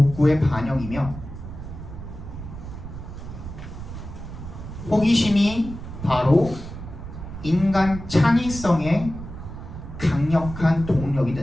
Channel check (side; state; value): right; noise; rumble, 10 dB below the sound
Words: 호기심이 바로 인간 창의성의 강력한 동력이